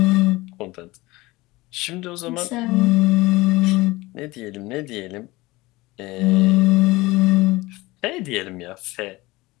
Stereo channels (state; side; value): quieter; right; 20.7 dB